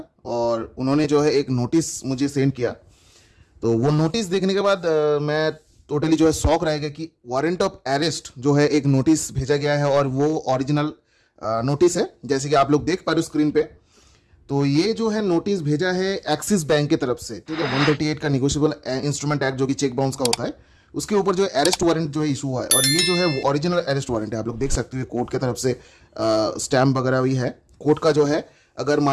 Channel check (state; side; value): identical; both; correlation 1.00